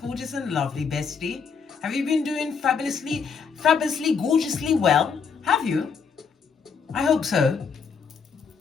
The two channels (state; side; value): quieter; right; 5.9 dB